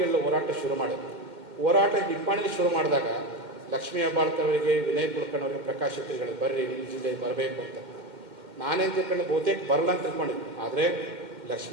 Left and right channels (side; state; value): left; late; 2.1 ms